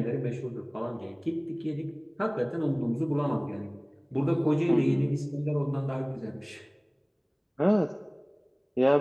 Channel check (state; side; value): identical; both; correlation 1.00